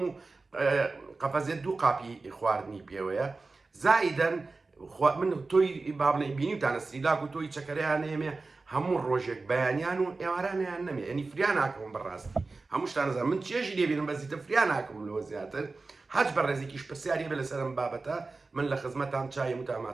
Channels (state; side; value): quieter; left; 3.7 dB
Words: قەفەزێت دوو قاپی خواردنی پێوەیە زائیدەن من تۆی بابنەی بینیوتانە سریلاک و تۆی چەکەریان نێمێ هەموو ڕۆژێک بەیانیان و ئێوارانیان نەمێ ئەنی فریان ناکەم بەڕاستی هەموو شتان نەزانم من چێژی لێبینم بەزیتە فریان ناکەم لەوە زیاتر هەچ بە ڕێزێکیش پرسیاری بێ لەسەرم بابەتە من لە خزمەتان چای